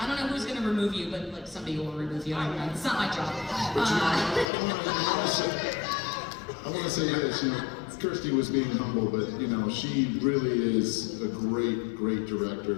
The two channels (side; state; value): right; drops out; at 4.5 s